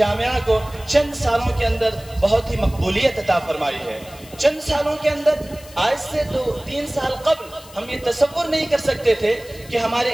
کو چند سالوں کے اندر بہت ہی مقبولیت عطا فرمائی ہے. چند سالوں کے اندر، آج سے 2-3 سال قبل ہم یہ تصور نہیں کر سکتے تھے کہ ہمارے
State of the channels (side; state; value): left; noise; hiss, 21 dB below the sound